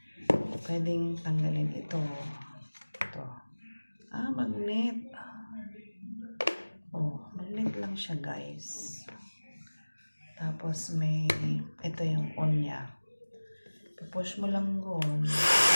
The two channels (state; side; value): inverted; both; correlation -1.00